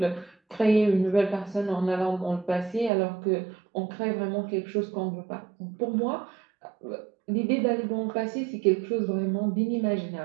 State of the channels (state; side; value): drops out; left; at 2.9 s